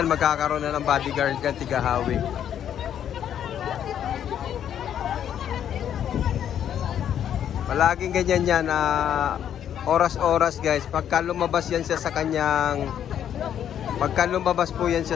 magkakaroon na ng bodyguard yan, tigahawi. Palaging ganyan yan, oras-oras, guys. Pagka lumabas yan siya sa kanyang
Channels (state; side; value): quieter; right; 9.7 dB